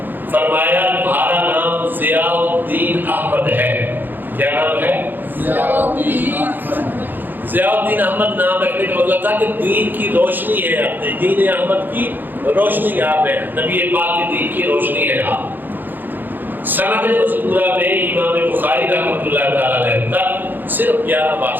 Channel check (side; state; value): left; late; 0.089 ms